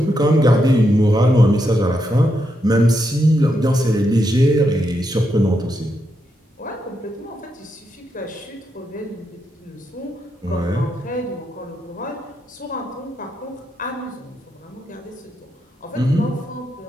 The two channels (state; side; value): normal; both; correlation 0.82